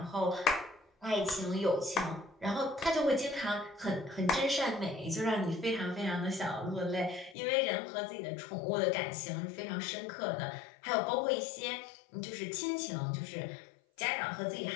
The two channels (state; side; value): drops out; right; at 7.4 s